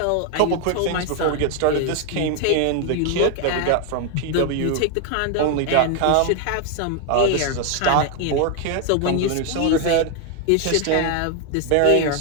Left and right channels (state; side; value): different; both; correlation 0.00